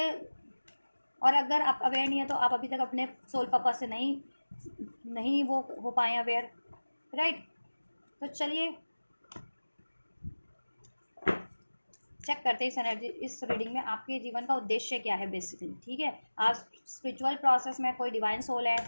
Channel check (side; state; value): both; inverted; correlation -1.00